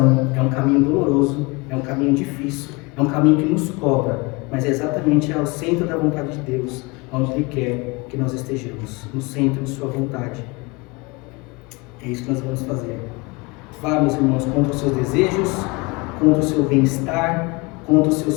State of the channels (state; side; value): quieter; right; 26.1 dB